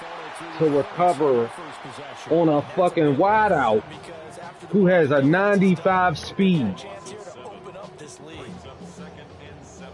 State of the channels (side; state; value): both; identical; correlation 1.00